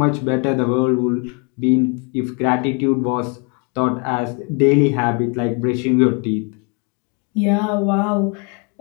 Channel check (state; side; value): quieter; right; 35.1 dB